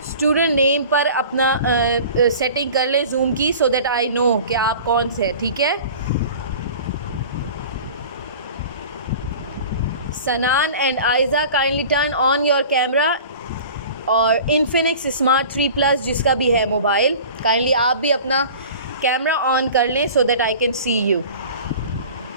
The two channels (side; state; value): both; inverted; correlation -0.41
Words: स्टूडेंट नेम पर अपना सेटिंग कर लें जूम की, सो दैट आई नो कि आप कौन से हैं। ठीक है। सनान and Aiza, kindly turn on your camera. और इनफिनिक्स स्मार्ट 3 प्लस जिसका भी है मोबाइल, काइंडली आप भी अपना कैमरा ऑन कर लें so that I can see you.